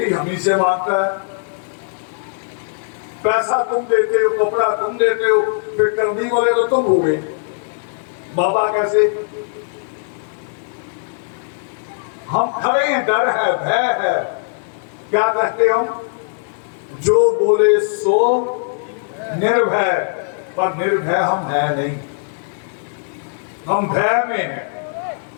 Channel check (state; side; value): silent; right; digital silence